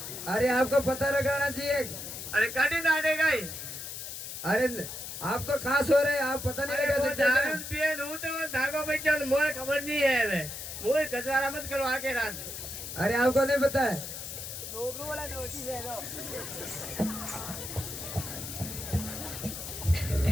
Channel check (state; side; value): noise; left; hiss, 8 dB below the sound